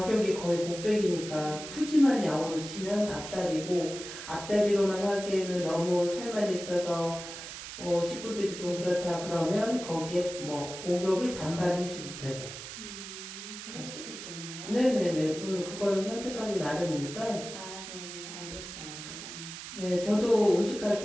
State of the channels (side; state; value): right; noise; hiss, 10 dB below the sound